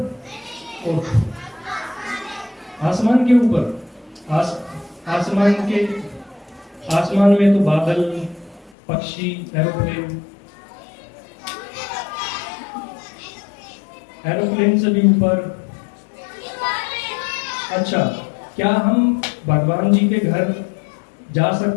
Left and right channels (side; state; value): right; drops out; at 8.7 s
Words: और आसमान के ऊपर, आसमान में तो बादल, पक्षी, एरोप्लेन से भी ऊपर। अच्छा, क्या हम भगवान जी के घर जा